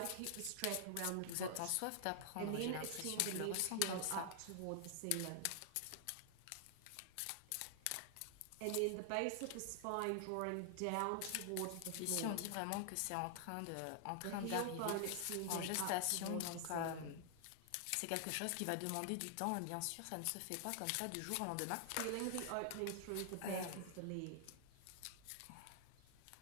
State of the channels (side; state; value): both; different; correlation 0.00